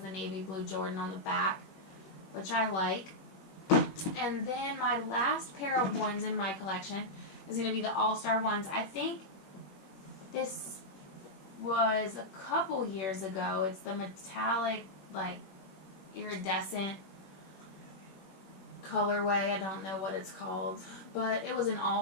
navy blue Jordan on the back, which I like. And then my last pair of 1s in my collection is going to be the All-Star 1s. I think this was a couple years ago. It's the metallic, like, iridescent colorway. I don't know what it's called, but it was an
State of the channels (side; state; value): right; late; 21 ms